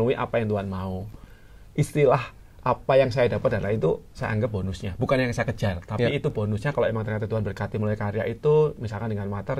apa yang Tuhan mau. Istilah apa yang saya dapat adalah itu saya anggap bonusnya, bukan yang saya kejar, tapi itu bonusnya kalau emang ternyata Tuhan berkati melalui karya itu, misalkan dengan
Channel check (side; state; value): both; identical; correlation 1.00